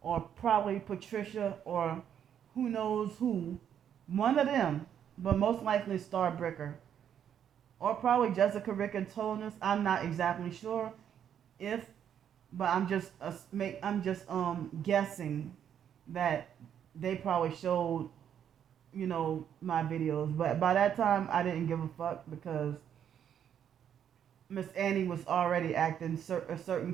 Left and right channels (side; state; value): left; quieter; 9.1 dB